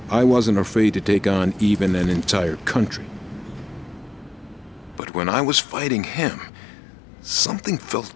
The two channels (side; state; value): right; drops out; at 5.0 s